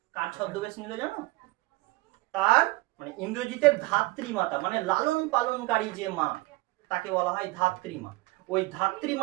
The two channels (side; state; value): left; quieter; 21.0 dB